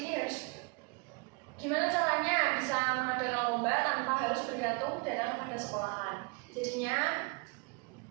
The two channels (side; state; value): left; quieter; 30.8 dB